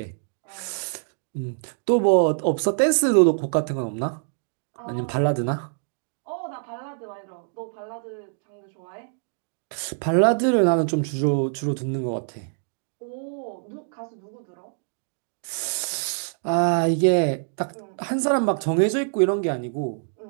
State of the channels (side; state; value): left; silent; digital silence